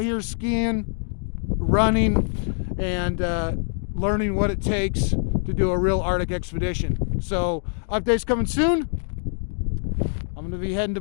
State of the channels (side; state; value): right; silent; 62 dB below the other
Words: here skiing, running, and learning what it takes to do a real Arctic expedition. So updates coming soon. I'm gonna be heading to